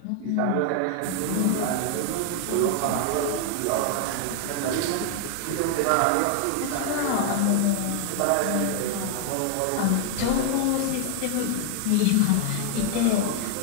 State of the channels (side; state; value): both; different; correlation 0.00